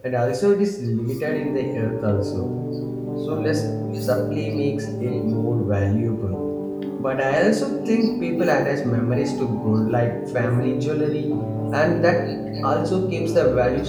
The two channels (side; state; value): both; identical; correlation 1.00